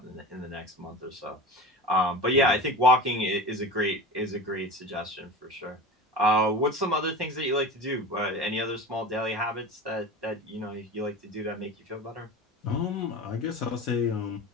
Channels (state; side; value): normal; both; correlation 0.31